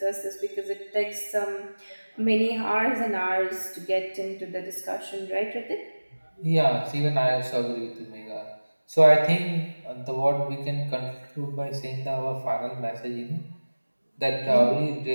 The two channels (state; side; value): inverted; both; correlation -1.00